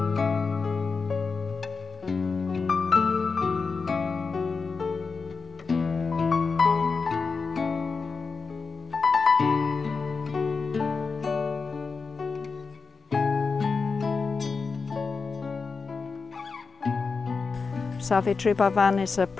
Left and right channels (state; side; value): quieter; right; 4.8 dB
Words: Zacbrisson is a